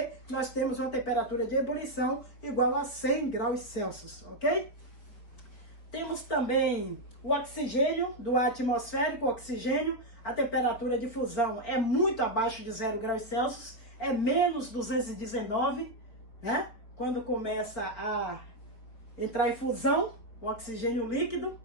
nós temos uma temperatura de ebulição igual a 100 graus Celsius, ok? Temos também o oxigênio, do ar atmosférico, o oxigênio. A temperatura de fusão é muito abaixo de 0 graus Celsius, é menos 219, Quando começa a entrar em fusão, o oxigênio líquido,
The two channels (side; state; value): right; late; 4.6 ms